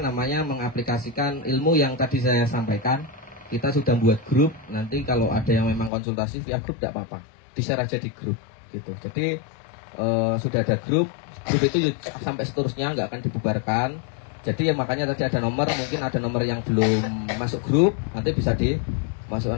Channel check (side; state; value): right; drops out; at 5.9 s